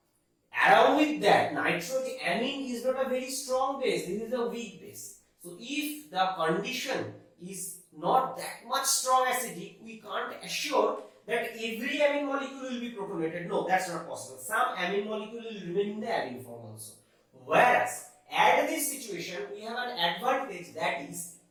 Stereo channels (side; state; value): both; identical; correlation 1.00